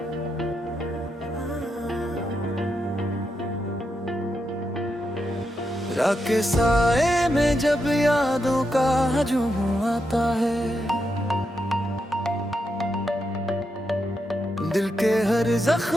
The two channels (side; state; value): both; normal; correlation 0.84